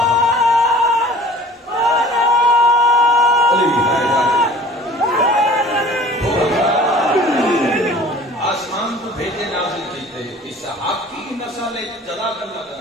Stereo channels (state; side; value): normal; both; correlation 0.47